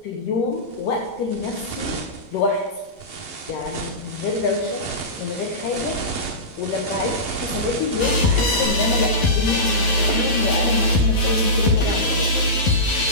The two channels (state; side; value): late; right; 11 ms